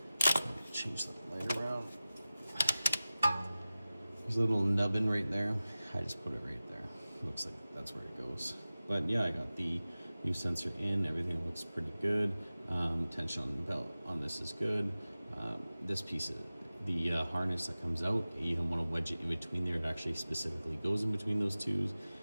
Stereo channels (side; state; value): both; inverted; correlation -0.96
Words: change the light around. There's a little nubbin right there. I just put it right there. Looks like that's where it goes. But yeah, I got the new sensor in. Everything looks pretty good. Tension on the belt on this is good. This piece of the harness that comes out, you don't want to wedge it in between there. It actually specifically goes in between those two.